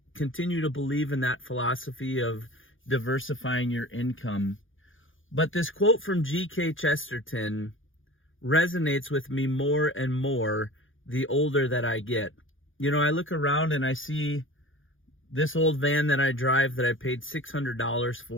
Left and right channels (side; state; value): right; late; 0.58 ms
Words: continue to believe in that philosophy of diversifying your income. But this quote from G.K. Chesterton resonates with me more and more the older that I get. I look around and I see this old van that I drive that I paid $600